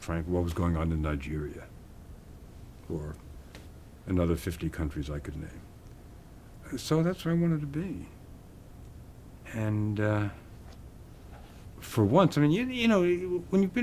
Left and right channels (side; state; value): both; identical; correlation 1.00